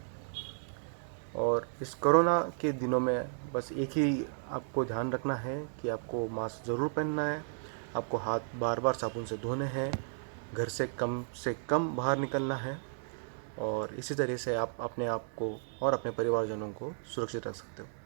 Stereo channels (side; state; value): left; silent; digital silence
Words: और इस कोरोना के दिनों में बस एक ही आपको ध्यान रखना है कि आपको मास्क ज़रूर पहनना है, आपको हाथ बार बार साबुन से धोने हैं, घर से कम बाहर निकलना है, और इसी तरह से आप अपने आप को और अपने परिवारजनों को सुरक्षित रख सकते हो।